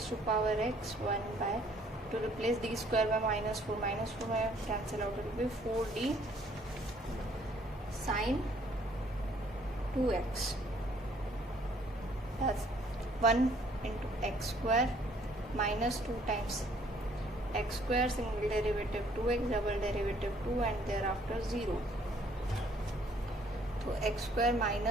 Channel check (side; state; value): both; normal; correlation 0.62